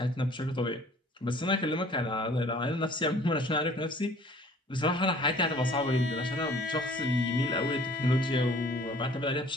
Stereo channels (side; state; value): both; normal; correlation 0.52